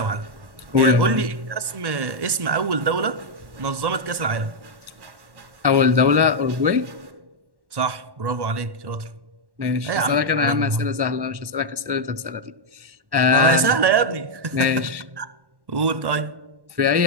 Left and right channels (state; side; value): late; left; 1.1 ms